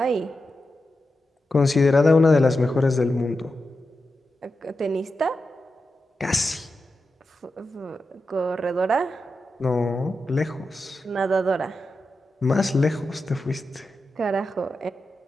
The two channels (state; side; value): normal; both; correlation 0.90